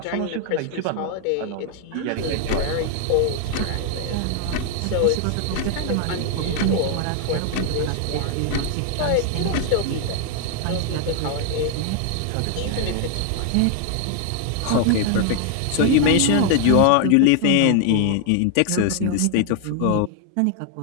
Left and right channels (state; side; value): different; both; correlation 0.00